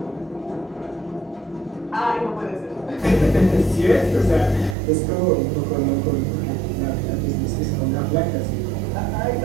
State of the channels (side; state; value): left; drops out; at 4.8 s